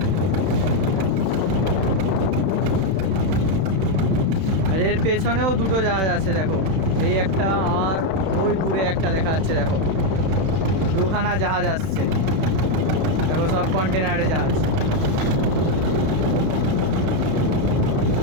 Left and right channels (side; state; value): left; late; 31 ms